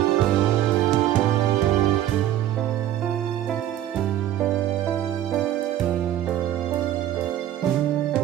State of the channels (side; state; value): left; quieter; 12.1 dB